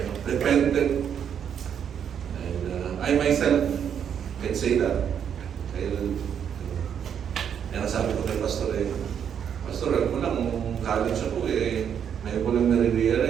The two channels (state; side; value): quieter; left; 8.3 dB